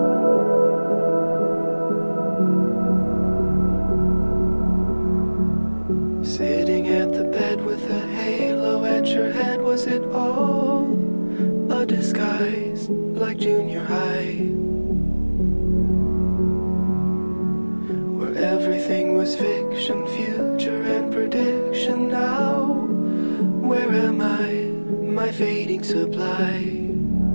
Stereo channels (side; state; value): both; inverted; correlation -1.00